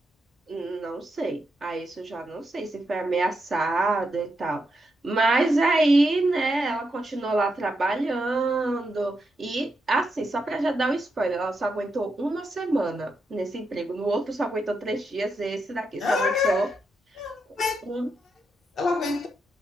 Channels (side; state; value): both; normal; correlation 0.83